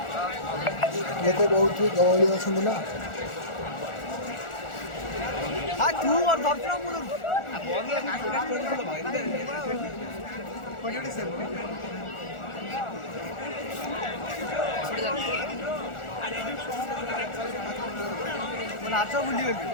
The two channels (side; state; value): right; late; 1.4 ms